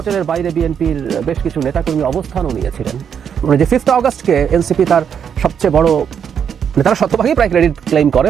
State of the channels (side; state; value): left; quieter; 7.8 dB